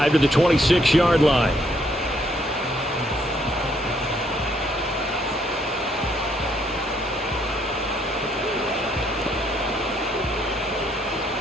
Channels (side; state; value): both; normal; correlation 0.70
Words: to the 26-yard line.